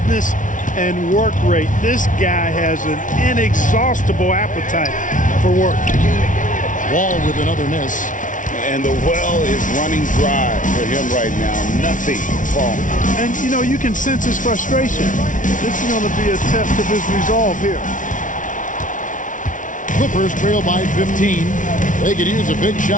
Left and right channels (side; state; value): right; late; 0.37 ms